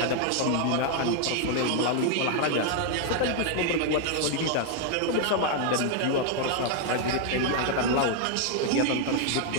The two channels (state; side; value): different; both; correlation 0.00